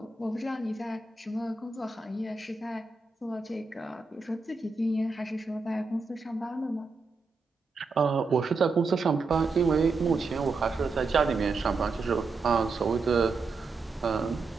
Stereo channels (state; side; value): quieter; left; 4.0 dB